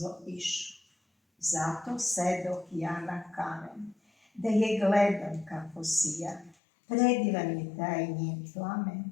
išao. Zato sedoh ja na kamen, da je gledam kako sija, predivan je taj njen plamen,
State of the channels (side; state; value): right; drops out; at 6.6 s